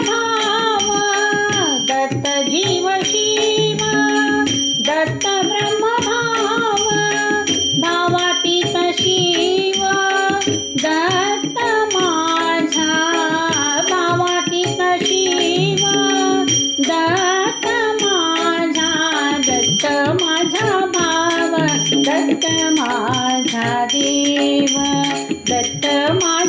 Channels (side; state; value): both; identical; correlation 1.00